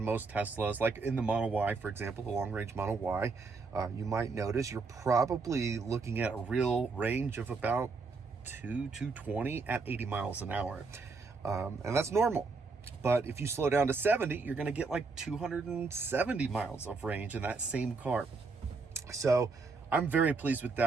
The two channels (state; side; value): quieter; left; 4.3 dB